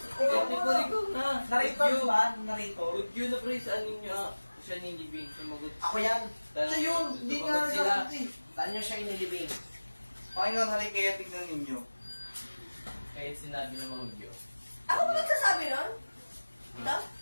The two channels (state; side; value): inverted; both; correlation -1.00